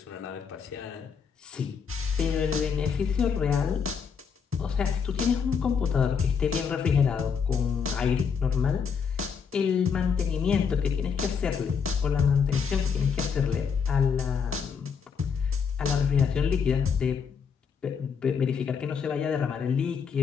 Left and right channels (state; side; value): quieter; right; 6.4 dB